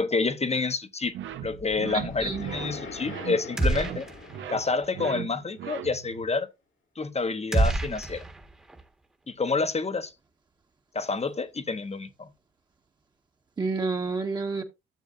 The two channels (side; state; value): both; normal; correlation 0.51